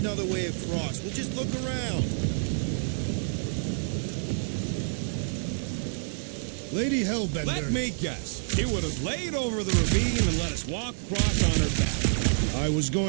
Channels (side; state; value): left; silent; digital silence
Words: way across. We'll just look around. Lady Hellbender. Let me guess. He would have laid over the ravine and let us walk across on her back. I was